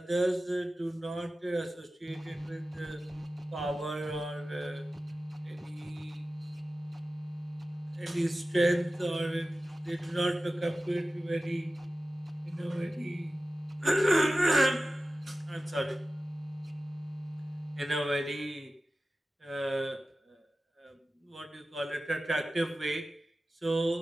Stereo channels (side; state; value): both; normal; correlation 0.95